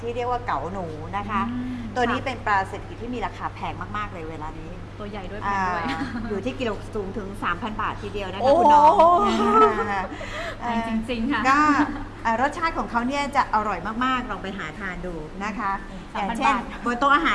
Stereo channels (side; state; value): both; identical; correlation 1.00